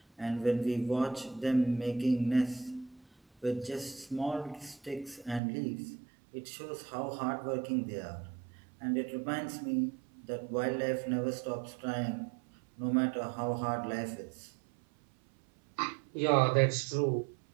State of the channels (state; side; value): drops out; left; at 5.4 s